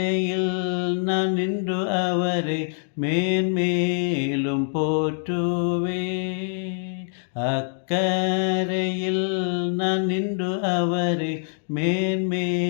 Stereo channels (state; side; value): silent; right; digital silence